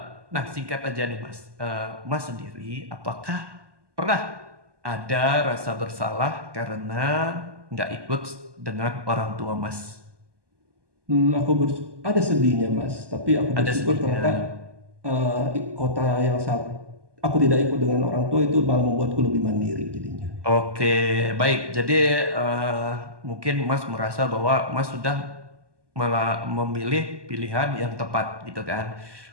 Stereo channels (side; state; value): left; late; 1.2 ms